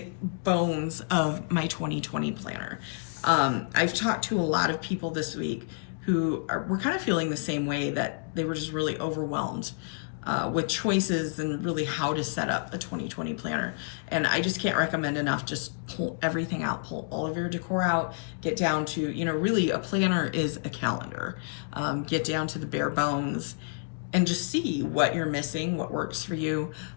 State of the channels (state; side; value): silent; right; digital silence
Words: bones of my 2020 planner. I've talked to a lot of people this week who were kind of feeling the same way, that they were just really overwhelmed with choices and really how to set up a 2020 planner. And I just can't recommend enough, just pull everything out, pull all of your decor out, get down to, you know, really a planner is a calendar. Get down to the bare bones and just see what you're missing, what works for you.